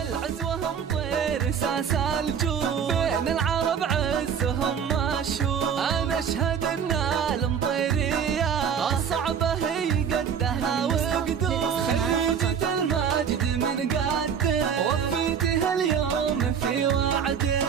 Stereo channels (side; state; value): left; quieter; 7.4 dB